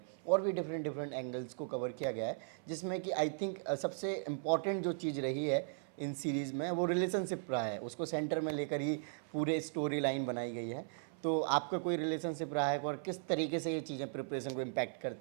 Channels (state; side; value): silent; left; 53 dB below the other